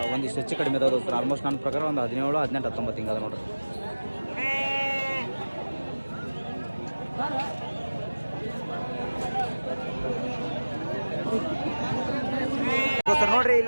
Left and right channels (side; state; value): both; inverted; correlation -1.00